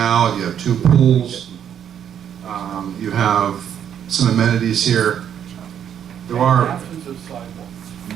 you have 2 pools, you have some amenities here. There are,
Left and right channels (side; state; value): left; quieter; 9.0 dB